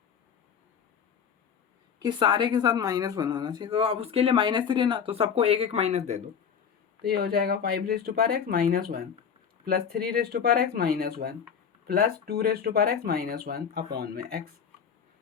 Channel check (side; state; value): right; quieter; 7.3 dB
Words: कि सारे के साथ माइनस वन होना चाहिए। तो अब उसके लिए माइनस थ्री है ना, तो सबको एक एक माइनस दे दो। तो ये हो जाएगा five raised to power x minus one plus three raised to power x minus one plus two raised to power x minus one upon में एक्स।